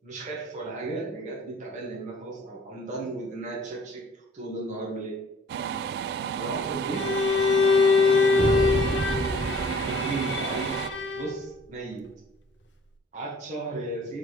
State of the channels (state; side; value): normal; both; correlation 0.53